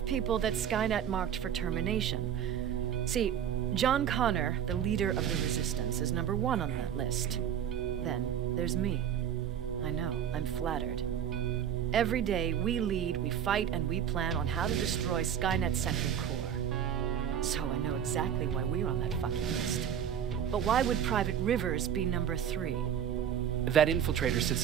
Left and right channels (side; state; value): left; quieter; 9.0 dB